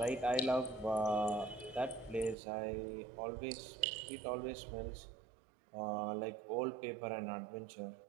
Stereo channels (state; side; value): drops out; left; at 2.4 s